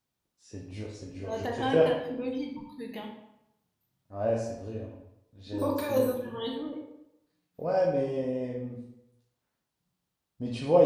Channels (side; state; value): both; identical; correlation 1.00